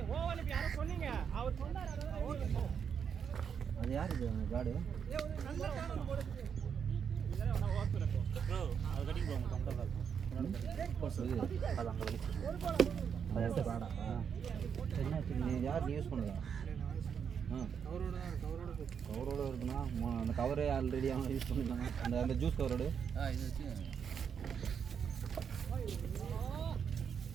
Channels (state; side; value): quieter; left; 7.2 dB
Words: அது யார் இது காடு? நீ யார் யூஸ் பண்ணுங்க? கவரோட இருக்குண்ணா. அந்த கவரே ஆல்ரெடி அவன் யூஸ் பண்ணிக்கலாம். அந்த ஜூஸ் கவரோடு இது வச்சு